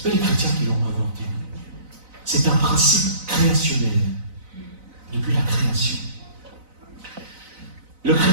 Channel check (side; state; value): left; late; 4.0 ms